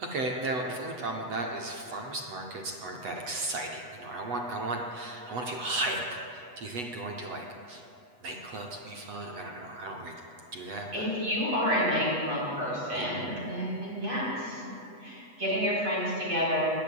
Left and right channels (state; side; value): late; left; 8.1 ms